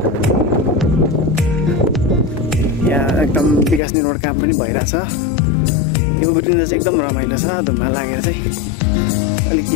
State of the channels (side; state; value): right; drops out; at 3.8 s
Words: यहाँ एकदम विकास निर्माण काम पनि भइरहेछ। यो उठ्दा चाहिँ एकदम रमाइलो छ, ढुङ्गा लागेर चाहिँ